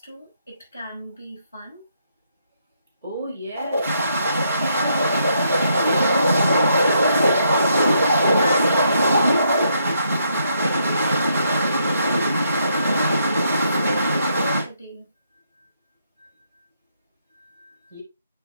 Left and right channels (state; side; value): inverted; both; correlation -0.75